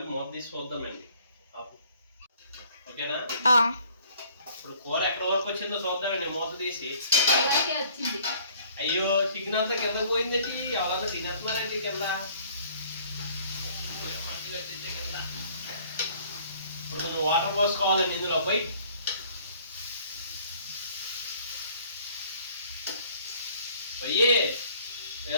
మూత తీసి చూద్దామండి. ఓకేనా? ఇప్పుడు కూర ఎక్కడ వరకు వచ్చిందో చూద్దామండి మూత తీసి. అయ్యో, చికెన్ అంతా కింద పోయిందండి. ఎవరన్నా తినేస్తున్నారండి కింద. ఇప్పుడు కొంచెం వాటర్ పోసుకోవాలండి ఇందులో. పోయి పోయి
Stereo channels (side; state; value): both; inverted; correlation -0.57